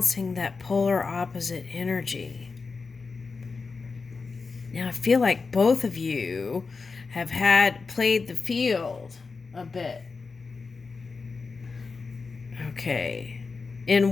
that polar opposite energy. Now I feel like both of you have played the field a bit. Okay. In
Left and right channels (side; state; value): right; quieter; 4.5 dB